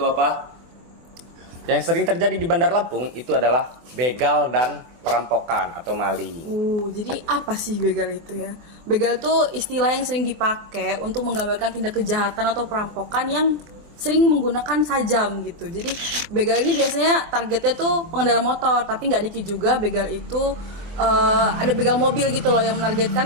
apa? Yang sering terjadi di Bandar Lampung itu adalah begal dan perampokan atau maling. Jadi apa sih begal itu ya? Begal itu istilah yang sering dipakai untuk menggambarkan tindak kejahatan atau perampokan yang sering menggunakan sajam gitu. Jadi begal ini biasanya targetnya tuh pengendara motor, tapi nggak dikit juga begal itu ada begal mobil gitu loh yang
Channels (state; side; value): late; left; 24 ms